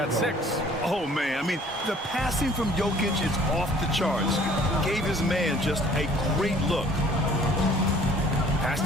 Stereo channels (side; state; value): both; normal; correlation 0.54